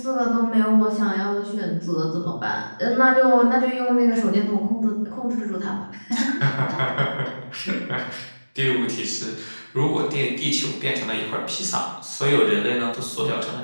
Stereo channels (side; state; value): both; inverted; correlation -1.00